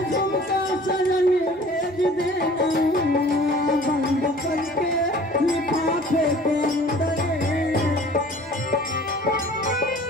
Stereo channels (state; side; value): normal; both; correlation 0.48